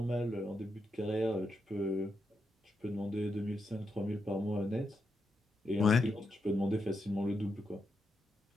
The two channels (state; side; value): normal; both; correlation 0.84